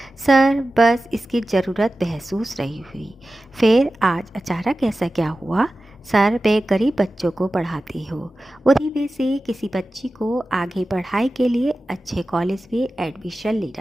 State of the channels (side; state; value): both; normal; correlation 0.94